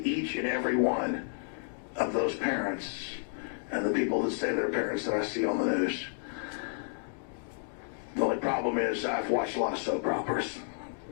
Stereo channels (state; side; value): silent; right; digital silence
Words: each and every one of those parents and the people that say they're parents that I see on the news. The only problem is I've watched a lot of soap operas,